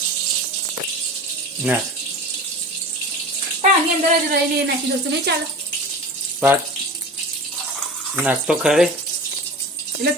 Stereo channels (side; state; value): both; normal; correlation 0.34